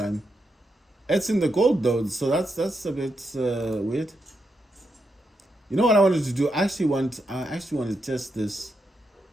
It's in the gold though, so that's a bit weird. You know what I wanted to do? I actually want to test this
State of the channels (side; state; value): both; normal; correlation 0.83